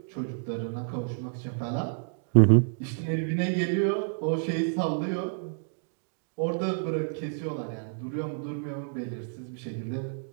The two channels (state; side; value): silent; left; digital silence